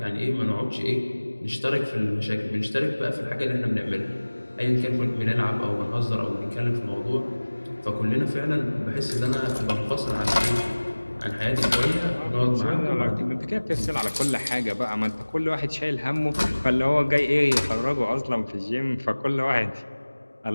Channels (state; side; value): inverted; both; correlation -1.00